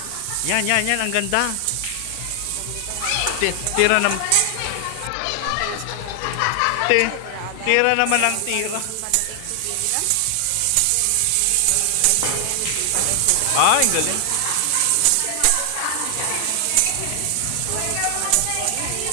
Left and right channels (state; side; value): different; both; correlation 0.00